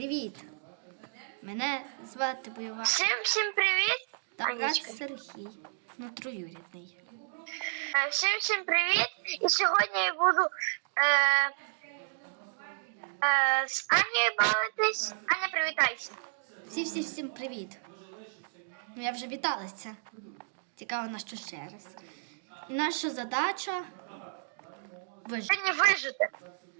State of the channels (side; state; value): left; silent; digital silence